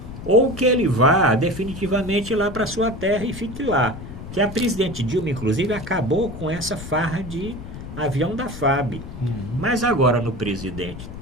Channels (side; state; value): left; noise; rumble, 11 dB below the sound